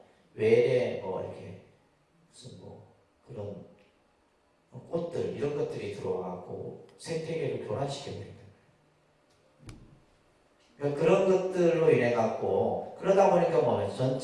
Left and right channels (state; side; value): identical; both; correlation 1.00